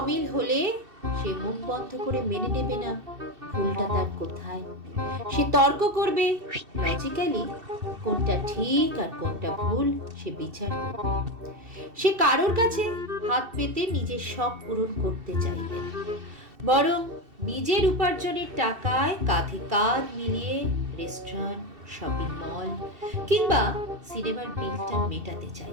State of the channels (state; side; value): late; left; 2.7 ms